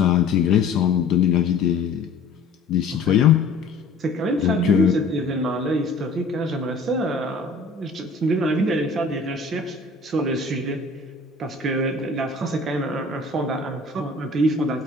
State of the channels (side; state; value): right; quieter; 3.6 dB